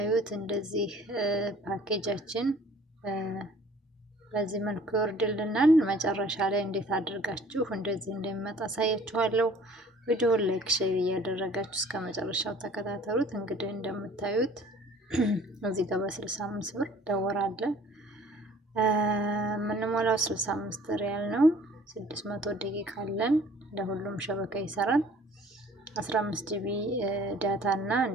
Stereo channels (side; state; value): both; normal; correlation 0.52